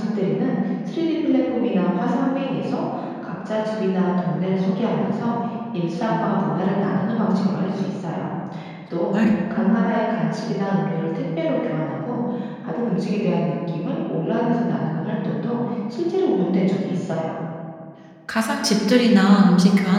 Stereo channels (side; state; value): both; identical; correlation 1.00